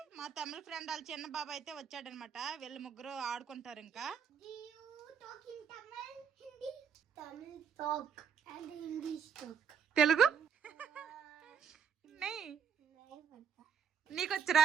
మా తమిళ ఫ్రెండ్ వాళ్ళ చిన్న బాబు అయితే వచ్చాడనమాట. వీళ్ళు ముగ్గురు ఆడుకుంటారు. ఇంకా తెలుగు నీకొచ్చరా?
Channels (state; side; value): quieter; left; 7.2 dB